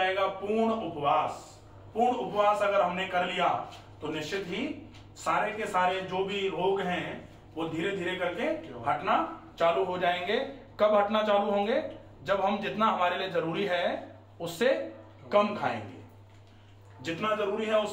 पूर्ण उपवास। पूर्ण उपवास अगर हमने कर लिया तो निश्चित ही सारे के सारे जो भी रोग हैं वो धीरे धीरे करके हटना चालू हो जाएंगे। कब हटना चालू होंगे? जब हम जितना हमारे लिए जरूरी है उससे कम खाएंगे। जितना जरूरी है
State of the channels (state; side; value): identical; both; correlation 1.00